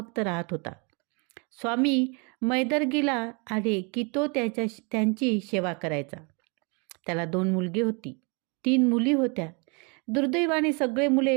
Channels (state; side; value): quieter; left; 33.0 dB